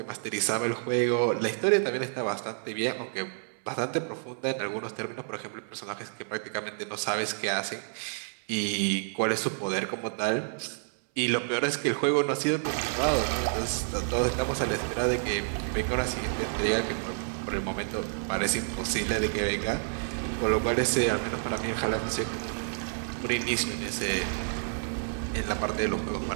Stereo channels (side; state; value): left; silent; 58 dB below the other